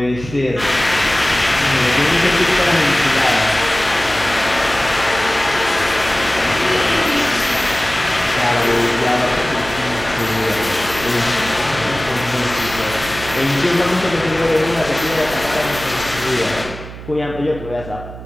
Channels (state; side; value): noise; right; hum, 13 dB below the sound